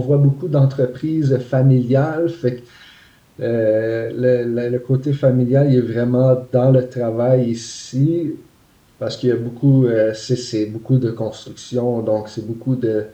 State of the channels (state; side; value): identical; both; correlation 1.00